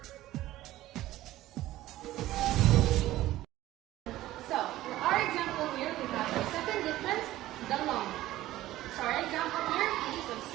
So, for our example here, we have the second difference, the long. So, our example here is of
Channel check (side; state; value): left; quieter; 15.5 dB